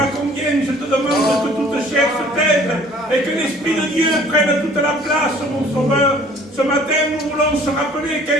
combien je te demande que toute chair se taise et que l'Esprit de Dieu prenne toute la place, mon Sauveur. Ce matin, nous voulons se rappeler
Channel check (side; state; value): both; normal; correlation 0.52